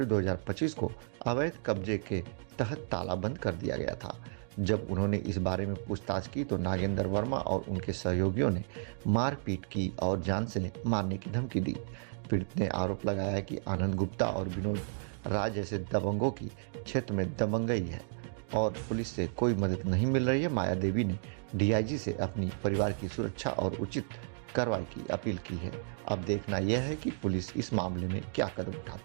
2025 को अवैध कब्जे के तहत ताला बंद कर दिया गया था। जब उन्होंने इस बारे में पूछताछ की तो नागेंद्र वर्मा और उनके सहयोगियों ने मारपीट की और जान से मारने की धमकी दी। पीड़ित ने आरोप लगाया कि आनंद गुप्ता और विनोद राय जैसे दबंगों की क्षेत्र में दबंगई है और पुलिस से कोई मदद नहीं मिल रही है। माया देवी ने डीआईजी से अपनी परिवार की सुरक्षा और उचित कार्रवाई की अपील की है। अब देखना यह है कि पुलिस इस मामले में क्या कदम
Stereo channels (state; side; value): silent; left; digital silence